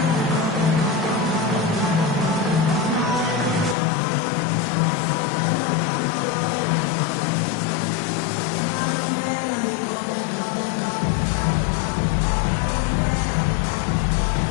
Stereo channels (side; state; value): right; drops out; at 3.8 s